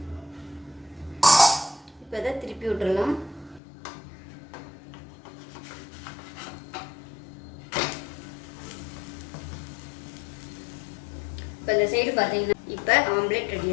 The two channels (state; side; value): drops out; right; at 3.6 s